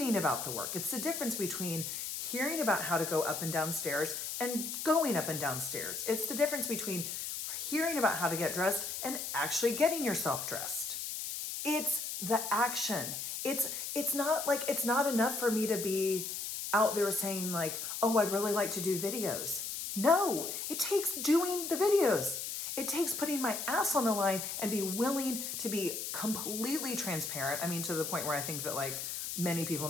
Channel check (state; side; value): noise; left; hiss, 5 dB below the sound